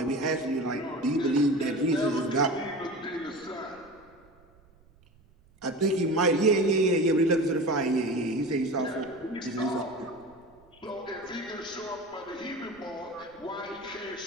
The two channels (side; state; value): right; noise; rumble, 29 dB below the sound